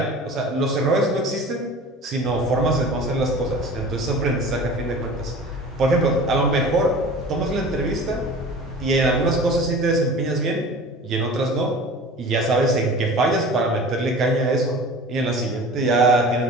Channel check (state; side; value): normal; both; correlation 0.40